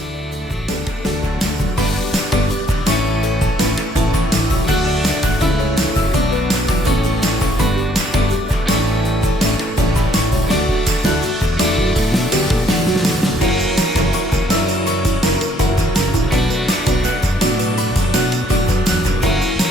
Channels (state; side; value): normal; both; correlation 0.66